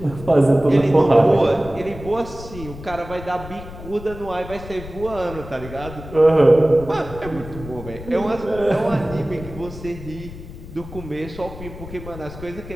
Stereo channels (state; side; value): noise; left; rumble, 13 dB below the sound